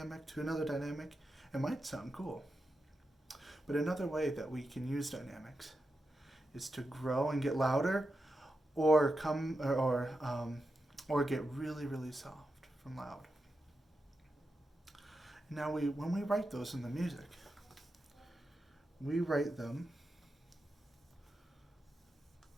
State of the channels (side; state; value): both; normal; correlation 0.89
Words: to another dynamic, it might sound cool. But another way that we can use dynamics is to grow and get louder, or get really, really soft from loud. Now when we write those in the music, we write them